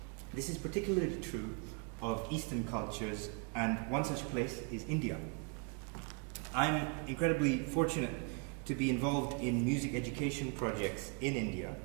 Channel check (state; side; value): quieter; left; 34.9 dB